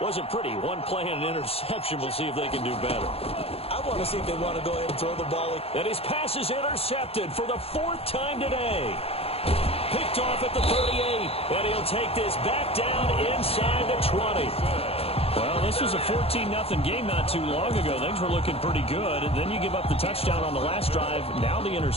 wasn't pretty. One play and an interception. We'll see if they can do better. I want to see if they want to go ahead and throw the ball. And his pass is intercepted for the 4th time today. Picked off at the 38. And he'll take this back down inside the 20. Well, this was a 14-0 game not too long ago. Things were looking pretty good. And then you give up the touchdown on the last drive. Now the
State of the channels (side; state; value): right; late; 0.28 ms